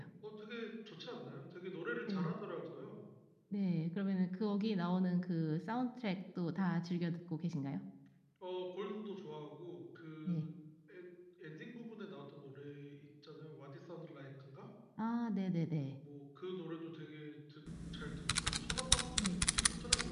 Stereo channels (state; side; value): identical; both; correlation 1.00